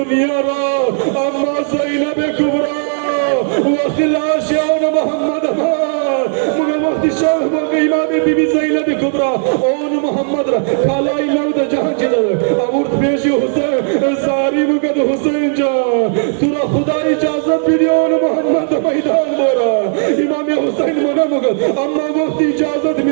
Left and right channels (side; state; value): left; silent; 63 dB below the other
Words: را اما زینب کبرا وقتی لاش اون محمد مگه وقتی شاه مگه امام بی بی زینب کبرا اون محمد را کالای نو د جهان چی داده امورت پیشی حسین زاری مگه حسین جان تو را خدا اجازت بیدی اون محمد میدان بورا امام حسین منا مگه اما وقتی اجازت